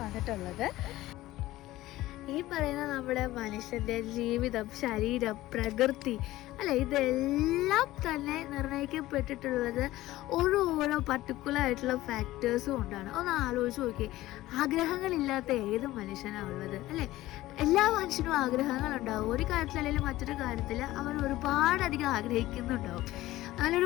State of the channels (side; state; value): right; quieter; 16.5 dB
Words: വന്നിട്ടുള്ളത്. ഈ പറയുന്ന നമ്മുടെ മനുഷ്യൻ്റെ ജീവിതം, ശരീരം, പ്രകൃതി അല്ല, ഇതെല്ലാം തന്നെ നിർണ്ണയിക്കപ്പെട്ടിട്ടുള്ളത് ഓരോ പർട്ടിക്കുലർ ആയിട്ടുള്ള ഫാക്ടേഴ്സും കൊണ്ടാണ്. ഒന്ന് ആലോചിച്ച് നോക്കിയേ, ആഗ്രഹങ്ങളില്ലാത്ത ഏത് മനുഷ്യനാണ് ഉള്ളത് അല്ലേ? എല്ലാ മനുഷ്യനും ആഗ്രഹങ്ങളുണ്ടാവും. ഒരു കാര്യത്തിൽ അല്ലെങ്കിൽ മറ്റൊരു കാര്യത്തിൽ അവൻ ഒരുപാടധികം ആഗ്രഹിക്കുന്നുണ്ടാവും.